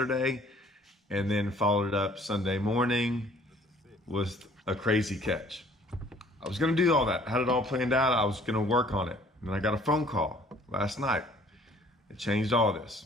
and then followed it up Sunday morning with a crazy catch. I was gonna do all that, had it all planned out, I was gonna work on it. And then I got a phone call last night. It changed all this.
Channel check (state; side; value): normal; both; correlation 0.57